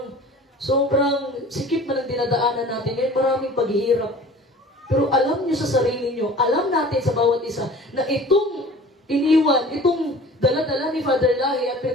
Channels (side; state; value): both; normal; correlation 0.44